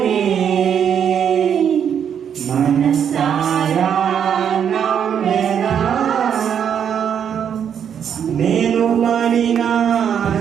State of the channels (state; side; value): quieter; left; 8.3 dB